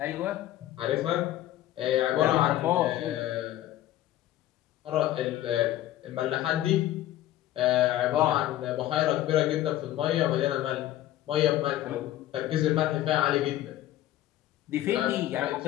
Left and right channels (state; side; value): quieter; right; 13.8 dB